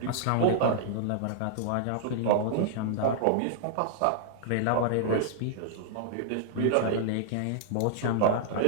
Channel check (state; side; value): different; both; correlation -0.01